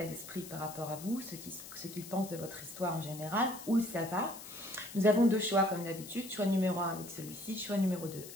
d'esprit par rapport à vous, ce qu'il pense de votre histoire en général, où ça va. Nous avons deux choix comme d'habitude, choix numéro 1 avec celui-ci, choix numéro 2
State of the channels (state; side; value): noise; left; hiss, 13 dB below the sound